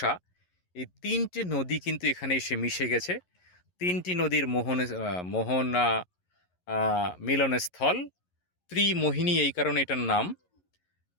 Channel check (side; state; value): right; late; 11 ms